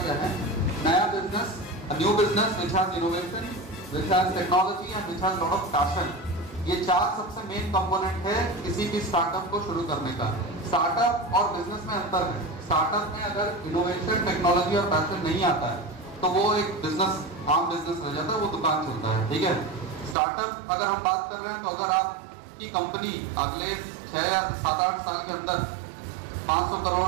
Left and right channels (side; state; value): left; drops out; at 20.2 s